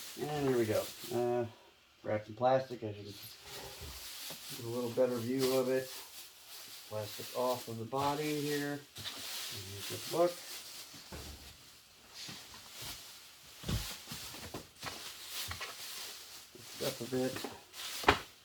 And here we go. Wrapped in plastic, as you can get a little better view of it. Plastic off of the body here. And here's the book. Up a bit.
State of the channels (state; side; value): identical; both; correlation 1.00